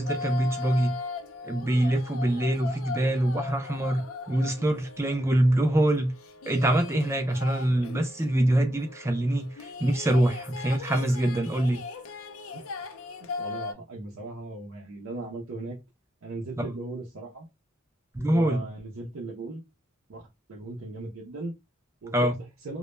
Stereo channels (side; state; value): both; normal; correlation 0.83